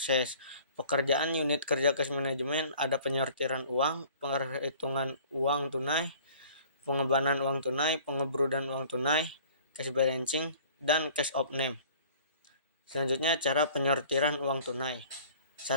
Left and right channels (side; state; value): both; inverted; correlation -0.50